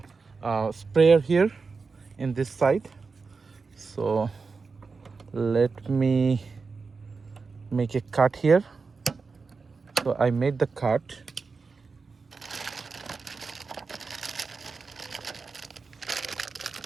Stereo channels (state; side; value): quieter; left; 4.6 dB